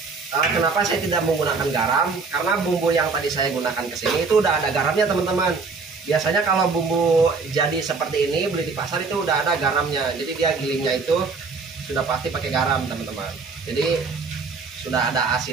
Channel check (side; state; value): left; quieter; 4.5 dB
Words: Kenapa saya tidak menggunakan garam? Karena bumbu yang tadi saya gunakan ke sini itu udah ada garamnya teman-teman. Biasanya kalau bumbu jadi seperti ini beli di pasar itu udah ada garamnya. Jadi dia gilingnya itu sudah pasti pakai garam teman-teman. Jadi sudah ada